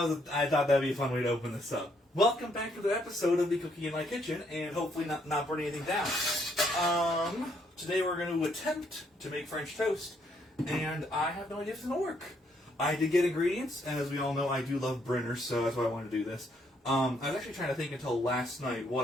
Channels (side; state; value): both; normal; correlation 0.71